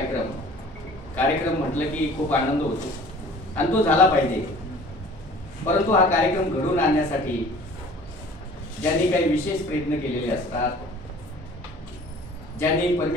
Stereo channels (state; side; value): normal; both; correlation 0.47